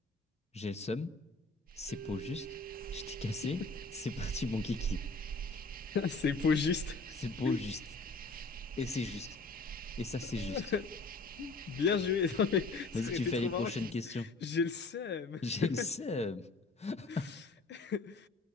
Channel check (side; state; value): right; quieter; 3.4 dB